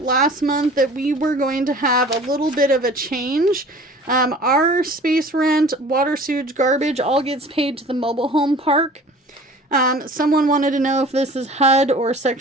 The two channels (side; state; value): both; normal; correlation 0.45